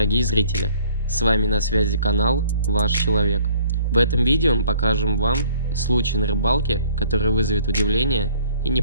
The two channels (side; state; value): both; inverted; correlation -0.57